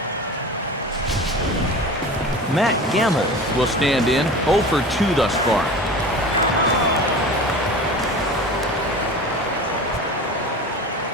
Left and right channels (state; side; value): normal; both; correlation 0.35